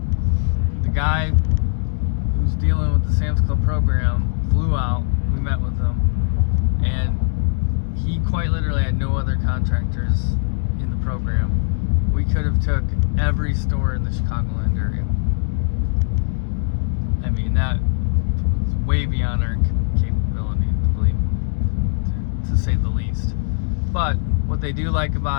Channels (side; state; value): right; silent; digital silence